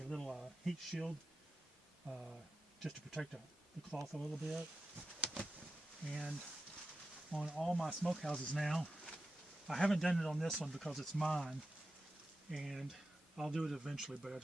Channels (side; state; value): both; normal; correlation 0.92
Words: little heat shield just to protect the cloth a little bit. And on all my smokehouses now, I haven't done it on this one because it's mine, and I'll do it eventually, but I